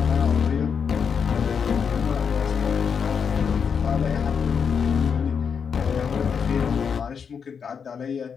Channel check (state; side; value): quieter; right; 6.6 dB